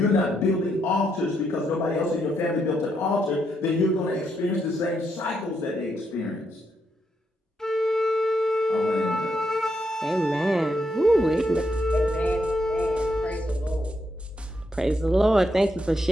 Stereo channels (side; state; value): both; normal; correlation 0.79